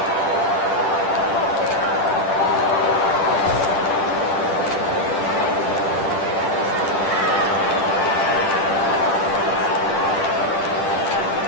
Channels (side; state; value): right; late; 10 ms